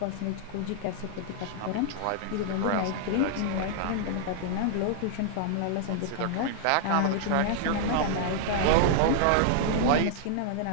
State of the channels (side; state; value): both; different; correlation -0.01